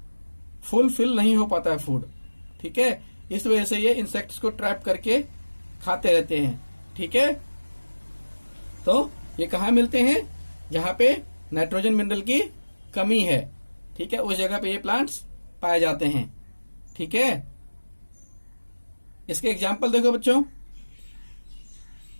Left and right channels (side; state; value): both; inverted; correlation -1.00